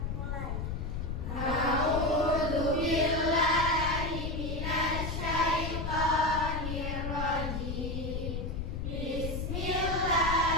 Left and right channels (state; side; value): noise; left; rumble, 3 dB below the sound